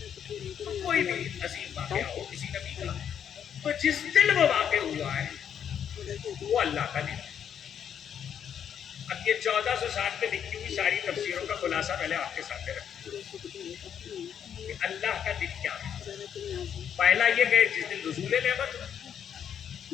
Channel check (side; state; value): right; quieter; 8.6 dB